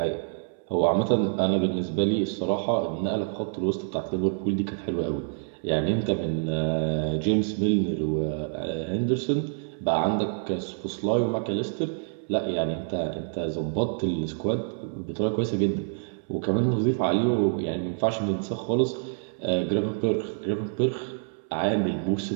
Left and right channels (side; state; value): left; silent; 60 dB below the other